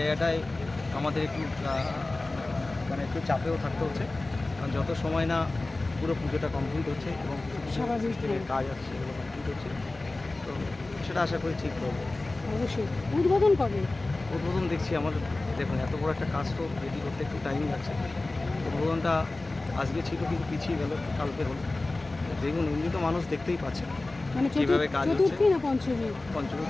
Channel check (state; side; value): quieter; right; 3.0 dB